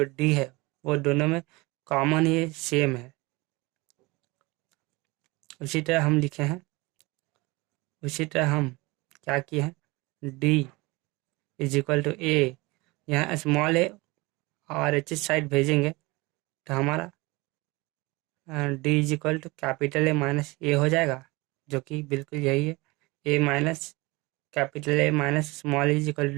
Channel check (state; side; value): quieter; left; 23.7 dB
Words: डी है वो दोनों में कॉमन ही सेम है। उसी तरह हम लिखे हैं, उसी तरह हम क्या किए हैं, D is equal to A. यहाँ स्मॉल ए और एच साइड भेजेंगे तो हमारा D is equal to capital A minus A हो जाएगा, जो कि बिल्कुल यही है। A minus capital A minus small is equal